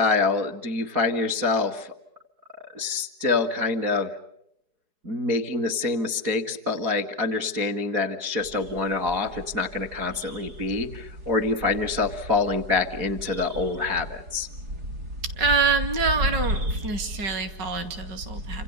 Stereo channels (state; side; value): late; left; 4.7 ms